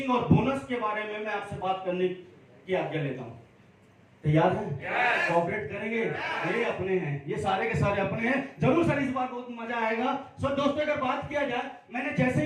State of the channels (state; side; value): identical; both; correlation 1.00